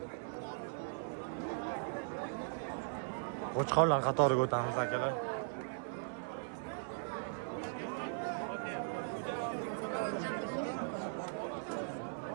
Qo'chqorlar qatoriga o'tamiz akalar.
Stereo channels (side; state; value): left; silent; 52 dB below the other